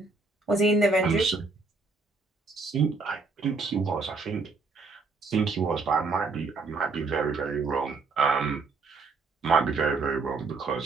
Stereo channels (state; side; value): quieter; left; 4.1 dB